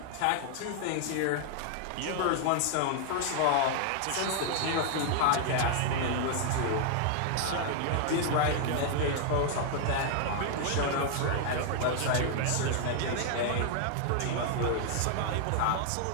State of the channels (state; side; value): different; both; correlation 0.00